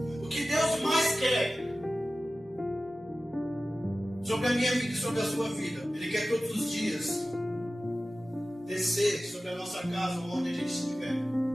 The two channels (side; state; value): both; normal; correlation 0.95